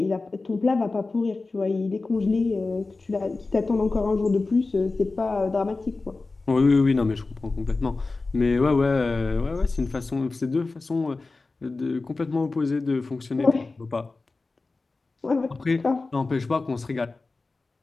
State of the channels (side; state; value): right; quieter; 3.6 dB